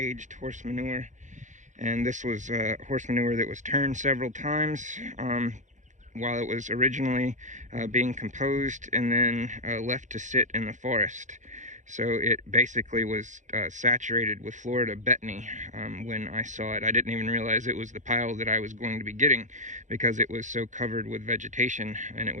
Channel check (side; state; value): left; late; 0.35 ms